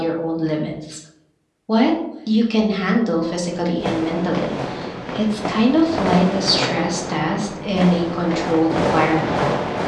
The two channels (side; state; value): both; identical; correlation 1.00